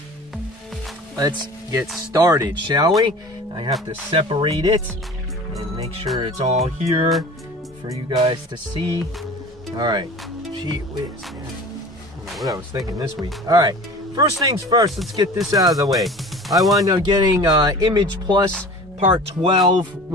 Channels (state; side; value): normal; both; correlation 0.40